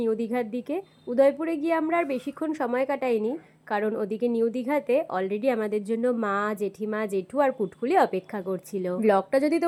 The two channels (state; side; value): identical; both; correlation 1.00